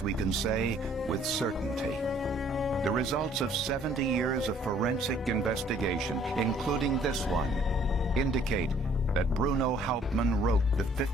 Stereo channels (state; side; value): normal; both; correlation 0.60